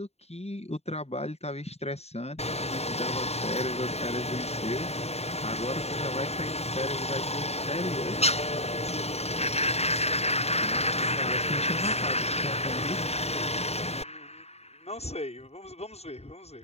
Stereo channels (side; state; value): right; late; 0.30 ms